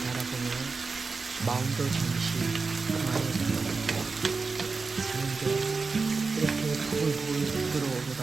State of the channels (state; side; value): quieter; left; 4.4 dB